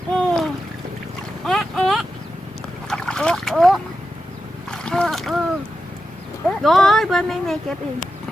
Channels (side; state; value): both; normal; correlation 0.90